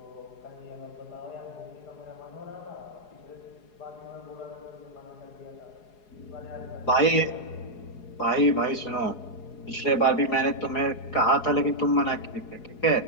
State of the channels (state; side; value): late; right; 4.8 ms